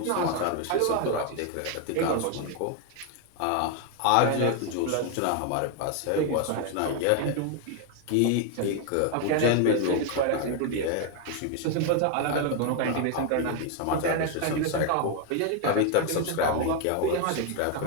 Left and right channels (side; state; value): both; different; correlation 0.01